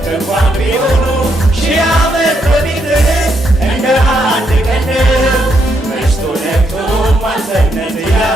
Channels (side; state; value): both; normal; correlation 0.77